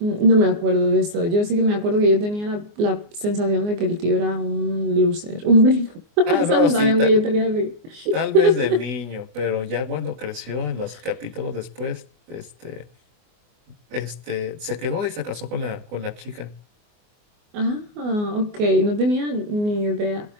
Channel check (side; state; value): left; late; 24 ms